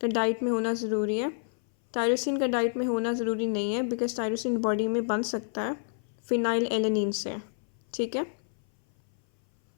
का डाइट में होना ज़रूरी है, टायरोसिन का डाइट में होना ज़रूरी नहीं है, बिकॉज टायरोसिन बॉडी में बन सकता है फिनाइल एलेनिन से। ठीक है,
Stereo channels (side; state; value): right; silent; 57 dB below the other